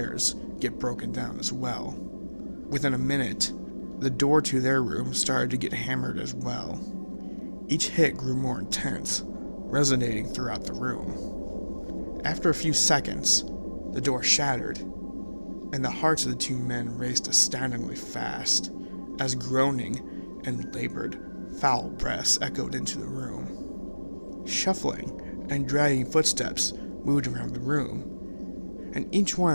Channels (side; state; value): both; inverted; correlation -1.00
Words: get broken down as well. Within a minute, the door to their room started to get hammered as well. Each hit grew more intense, resonating throughout the room. After a few seconds, the door shattered, and the hearts of the two men raced astoundingly fast, as groaning and labored, foul breaths echoed into the room. Shuffling and dragging footsteps moved around the room, and each